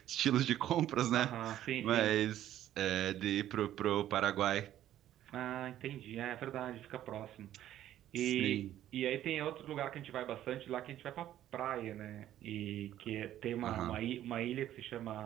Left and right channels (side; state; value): left; quieter; 12.3 dB